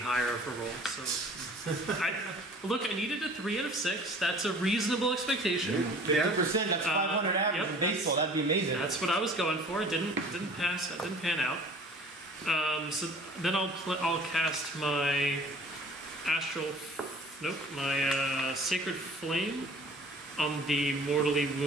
of a roll. So, I needed a 3 out of 6. That's a reasonable expectation. 50%, that's 500 average yep. in baseball. That'd be amazing. That's what I was going for. It didn't pass. It didn't pan out. So then I'll cast my astral. Nope, my sacred flame on the mortally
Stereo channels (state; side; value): normal; both; correlation 0.48